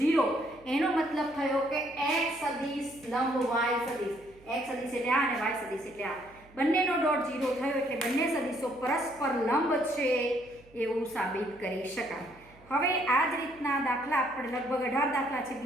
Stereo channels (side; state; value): right; noise; hum, 26 dB below the sound